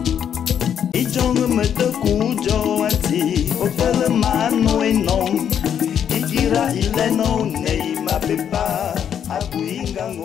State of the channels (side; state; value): right; quieter; 8.7 dB